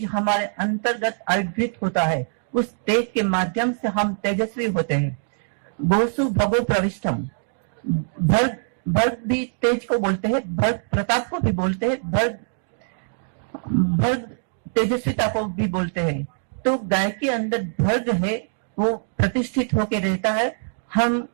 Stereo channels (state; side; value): silent; left; digital silence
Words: हमारे अंतर्गत आविर्भूत होता है। उस तेज के माध्यम से हम तेजस्वी होते हैं। गोसु भगो प्रविष्टम, भर्ग भी तेज को बोलते हैं, भर्ग प्रताप को भी बोलते हैं, भर्ग तेजस्विता को भी बोलते हैं। तो गाय के अंदर भर्ग है, वो प्रतिष्ठित होकर रहता है। हम